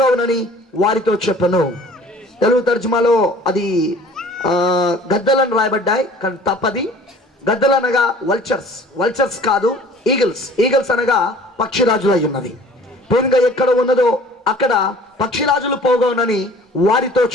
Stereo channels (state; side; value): normal; both; correlation 0.49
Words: వారితో చెప్పను. తెలుగు తర్జుమాలో అది గద్దలను రాయబడ్డాయి, కానీ తప్పది. గద్దలు అనగా వల్చర్స్, వల్చర్స్ కాదు, ఈగల్స్. ఈగల్స్ అనగా పక్షిరాజులు అయి ఉన్నది. పీనుగ ఎక్కడ ఉన్నదో అక్కడ పక్షిరాజులు పోగవునని వారితో